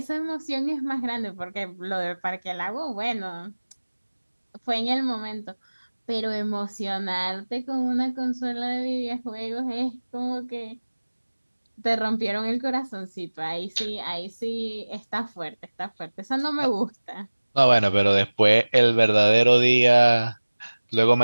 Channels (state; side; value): inverted; both; correlation -1.00